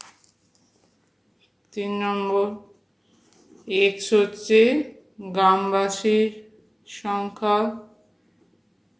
3 নম্বর, এক্স হচ্ছে গ্রামবাসীর সংখ্যা,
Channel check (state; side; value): identical; both; correlation 1.00